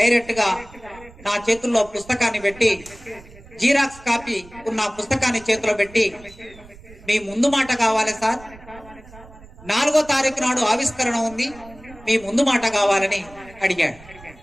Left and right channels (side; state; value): right; noise; rumble, 21 dB below the sound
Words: గా నా చేతుల్లో పుస్తకాన్ని పెట్టి, జీరాక్స్ కాపీ ఉన్న పుస్తకాన్ని చేతిలో పెట్టి, మీ ముందు మాట కావాలి సార్, 4వ తారీఖు నాడు ఆవిష్కరణ ఉంది, మీ ముందు మాట కావాలని అడిగాడు.